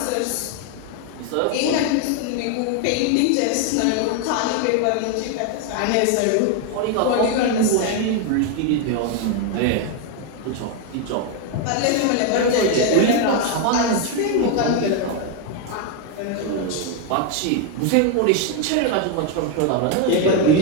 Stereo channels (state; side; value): different; both; correlation 0.01